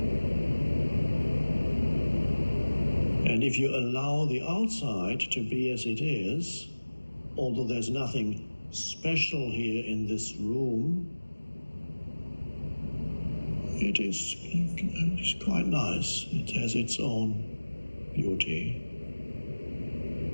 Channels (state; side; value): inverted; both; correlation -1.00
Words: And if you allow the outside to be as it is, although there's nothing special here in this room, it is quite nice. It has its own beauty.